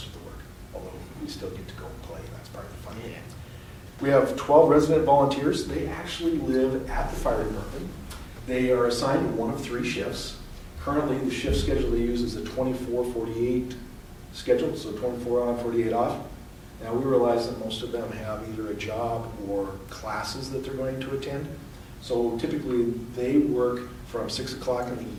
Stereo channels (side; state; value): both; identical; correlation 1.00